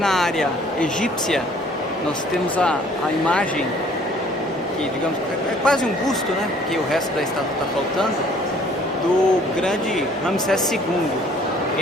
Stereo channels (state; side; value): normal; both; correlation 0.57